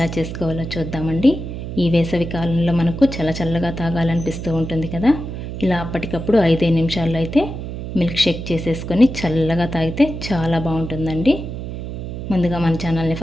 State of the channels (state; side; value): noise; right; hum, 7 dB below the sound